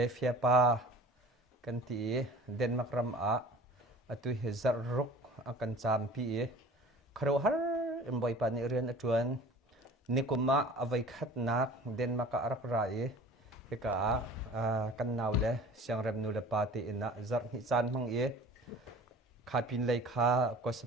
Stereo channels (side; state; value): both; normal; correlation 0.44